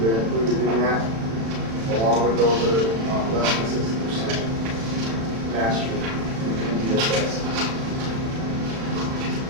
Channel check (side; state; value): left; late; 36 ms